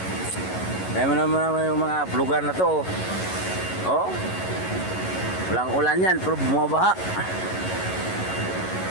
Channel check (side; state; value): right; late; 11 ms